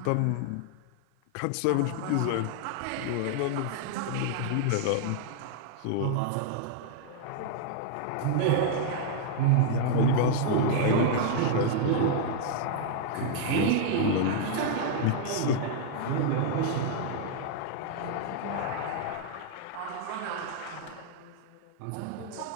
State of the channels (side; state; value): both; different; correlation 0.00